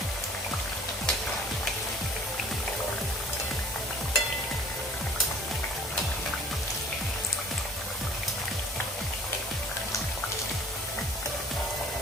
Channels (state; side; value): normal; both; correlation 0.51